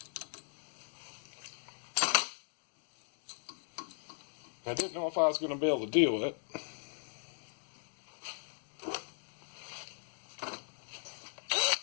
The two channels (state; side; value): silent; right; digital silence